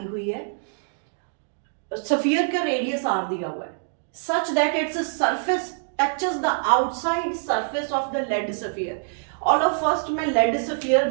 हुई है, स्फीयर का रेडियस आर दिया हुआ है, such that its surface touches the outside surface of the lead sphere. All of first मैं lead sphere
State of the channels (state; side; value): silent; left; digital silence